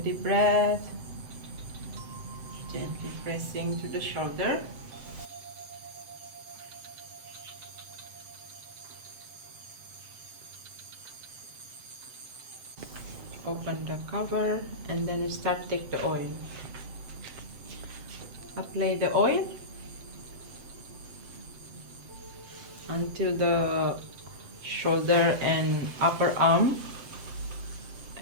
breath. Gently pressing to the shoulder. Open the cover and then start take the oil. Apply the oil until the shoulder and upper arm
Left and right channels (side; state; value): left; late; 7.8 ms